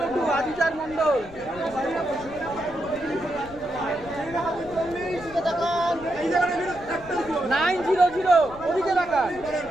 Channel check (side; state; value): left; noise; rumble, 18 dB below the sound